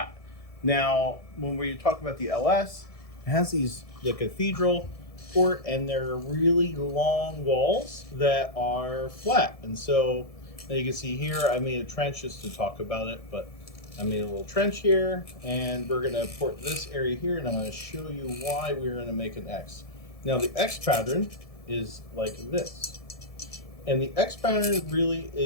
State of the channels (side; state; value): right; late; 1.7 ms